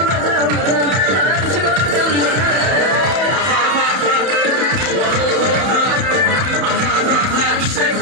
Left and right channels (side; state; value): left; late; 31 ms